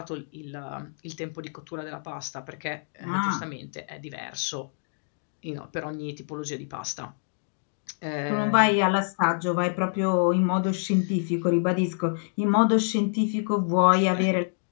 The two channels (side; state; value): right; silent; digital silence